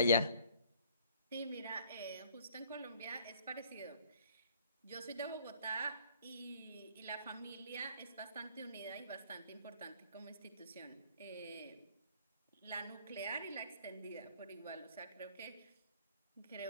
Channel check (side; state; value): both; inverted; correlation -0.57